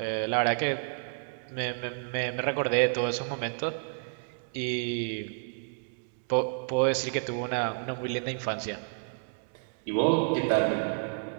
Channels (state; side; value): silent; left; 58 dB below the other